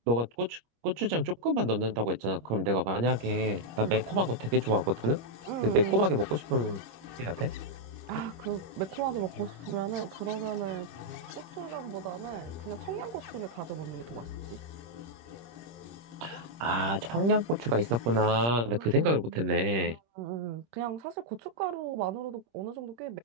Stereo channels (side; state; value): left; late; 26 ms